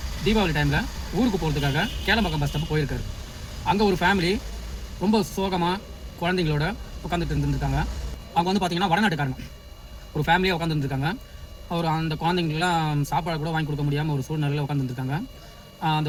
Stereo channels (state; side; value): identical; both; correlation 1.00